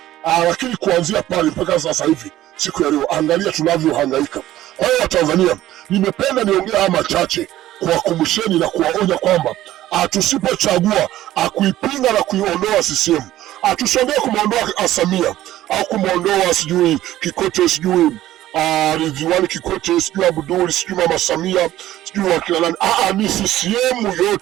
Lakini kuanzia pale mpaka sasa hivi siku ya leo, angalia tunavyohangaika. Kwa hiyo Tanzania, nimependa niongea haya machache kuwakumbusheni na kuwaonya kwamba tusipochagua kuipinga na kuiondoa CCM, tusongee kumwondoa Samia au kumwondoa sijui Kikwete, sijui Ridhiwani Kikwete, sijui Abdul, sijui Mama Samia, sijui wakina nani. Ni CCM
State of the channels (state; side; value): quieter; left; 14.2 dB